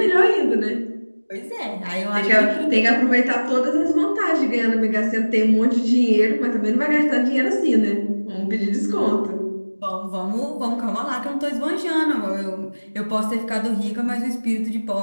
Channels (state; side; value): inverted; both; correlation -1.00